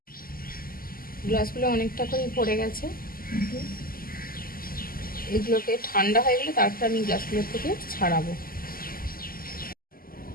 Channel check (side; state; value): right; late; 0.42 ms